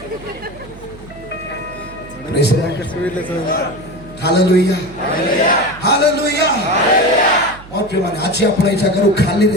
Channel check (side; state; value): right; noise; hum, 19 dB below the sound